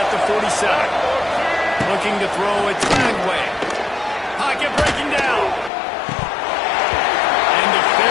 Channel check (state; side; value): drops out; right; at 5.7 s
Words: the 47. Looking to throw it Dragway. Pocket breaking down. And the